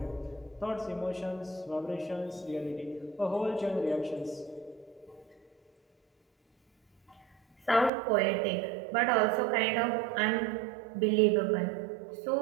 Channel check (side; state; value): left; drops out; at 7.9 s